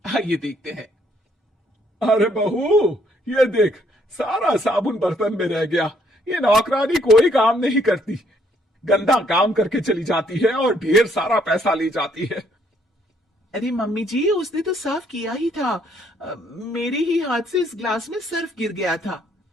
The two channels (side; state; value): both; normal; correlation 0.68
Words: आइए देखते हैं। अरे बहू, ये देख, सारा साबुन बर्तन में रह गया। ये नौकरानी कोई काम नहीं करती, गंदा काम करके चली जाती है और ढेर सारा पैसा ले जाती है। अरे मम्मी जी, उसने तो साफ किया ही था। मेरे ही हाथ से इस ग्लास में सर्फ गिर गया था।